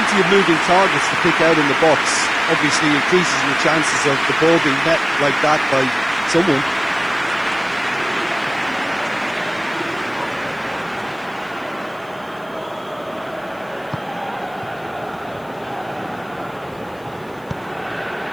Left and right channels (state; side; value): noise; left; hiss, 29 dB below the sound